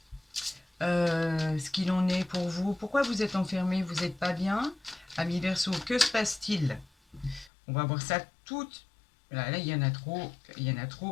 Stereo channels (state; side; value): drops out; right; at 7.5 s